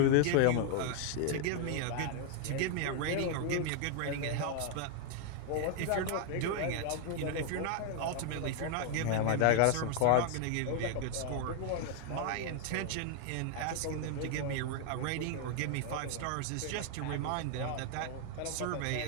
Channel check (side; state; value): both; different; correlation 0.00